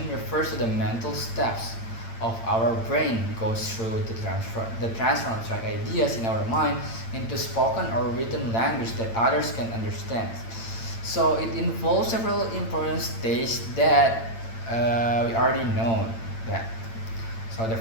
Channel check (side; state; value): right; late; 8.9 ms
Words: refers to the mental steps of our brain goes through the transfer of abstract ideas in our mind into spoken or written language that others can understand. So it involves several important stages that we already know that. So the